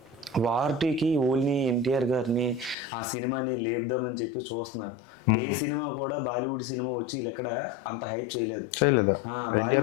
వార్టీకి ఓన్లీ ఎన్టీఆర్ గారిని ఆ సినిమాని లేపుదామని చెప్పి చూస్తున్నారు. ఏ సినిమా కూడా బాలీవుడ్ సినిమా వచ్చి ఎక్కడ అంత హైప్ చేయలేదు.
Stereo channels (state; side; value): drops out; right; at 2.8 s